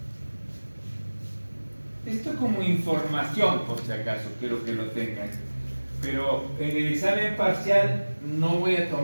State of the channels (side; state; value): both; inverted; correlation -1.00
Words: Esto como información, por si acaso, quiero que lo tengan. Pero en el examen parcial no voy a